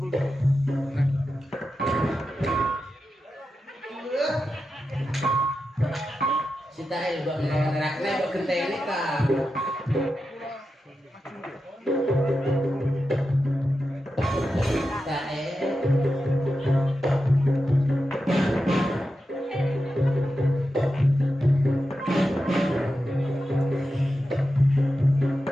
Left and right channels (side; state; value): both; normal; correlation 0.90